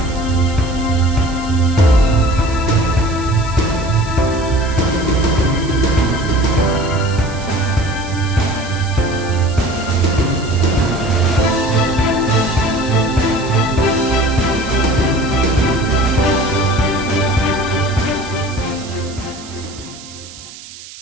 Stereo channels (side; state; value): right; noise; hiss, 17 dB below the sound